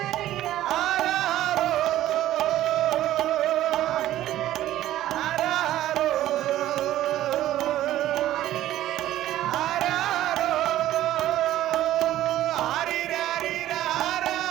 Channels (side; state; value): left; quieter; 13.7 dB